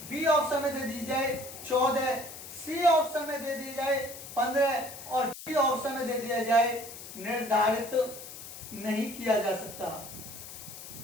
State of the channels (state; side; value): noise; left; hiss, 13 dB below the sound